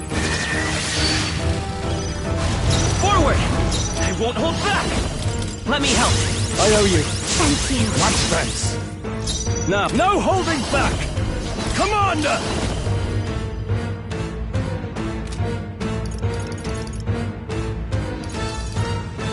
Forward! I won't hold back! Let me help. I owe you. Thank you. Much thanks. Now, no holding back! Commander!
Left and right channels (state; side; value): identical; both; correlation 1.00